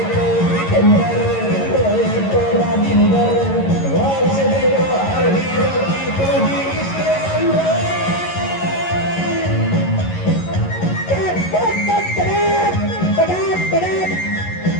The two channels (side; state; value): right; late; 11 ms